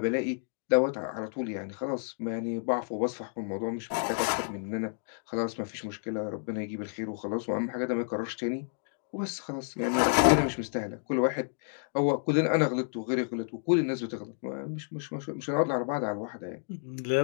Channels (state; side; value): silent; right; digital silence